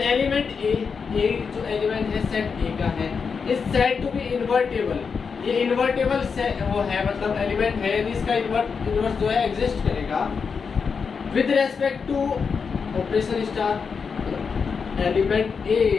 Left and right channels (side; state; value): right; quieter; 5.7 dB